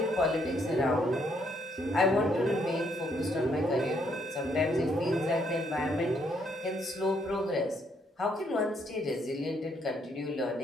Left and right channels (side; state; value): both; normal; correlation 0.71